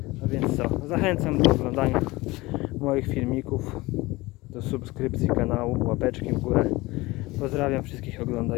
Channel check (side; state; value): right; quieter; 21.0 dB